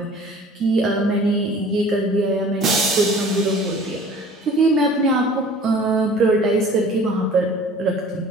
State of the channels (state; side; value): normal; both; correlation 0.47